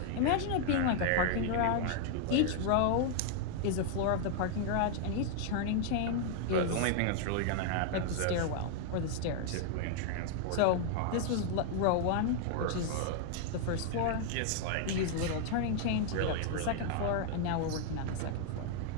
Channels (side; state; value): both; different; correlation 0.00